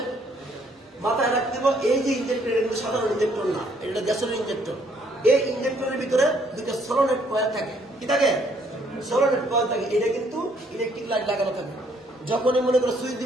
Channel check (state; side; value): normal; both; correlation 0.66